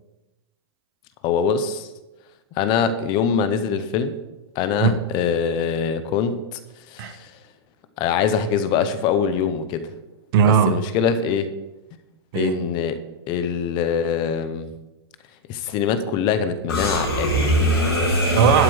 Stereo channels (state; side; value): normal; both; correlation 0.02